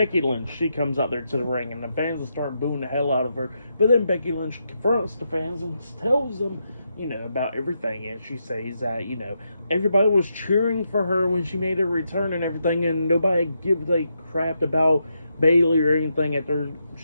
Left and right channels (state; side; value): inverted; both; correlation -0.82